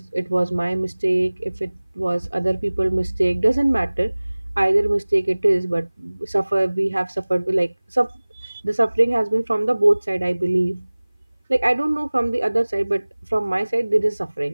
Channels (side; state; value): both; inverted; correlation -1.00